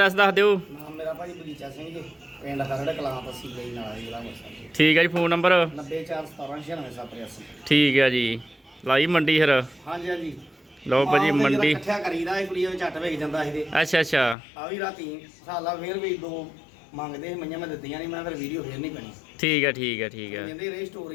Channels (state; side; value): drops out; right; at 14.4 s